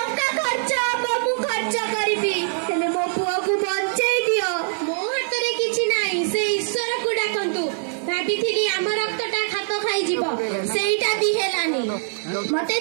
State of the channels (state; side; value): silent; left; 62 dB below the other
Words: ଖର୍ଚ୍ଚ ହବ ମୁଁ ଖର୍ଚ୍ଚ କରିବି, ହେଲେ ମୋ ପୁଅକୁ ବଞ୍ଚେଇ ଦିଅ। ମୋ ହାତରେ କିଛି ନାହିଁ, ସେ ଈଶ୍ୱରକୁ ଡାକନ୍ତୁ। ଭାବିଥିଲି ଆମ ରକ୍ତଟା ଖାପ ଖାଇଯିବ, ସେଇଟା ବି ହେଲାନି। ମତେ